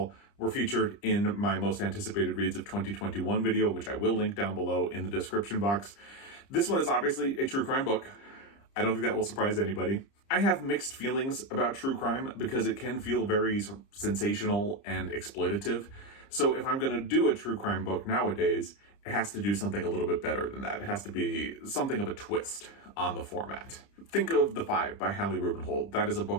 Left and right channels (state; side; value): late; right; 30 ms